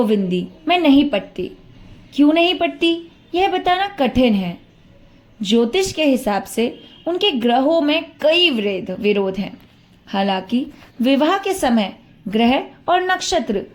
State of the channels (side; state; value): both; identical; correlation 1.00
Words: में नहीं पटती। क्यों नहीं पटती यह बताना कठिन है। ज्योतिष के हिसाब से उनके ग्रहों में कई विरोध हैं। हालांकि विवाह के समय ग्रह और नक्षत्र